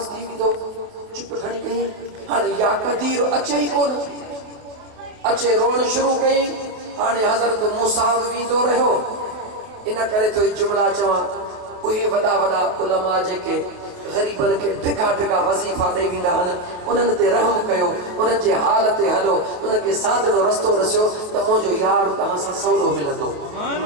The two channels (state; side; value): late; left; 28 ms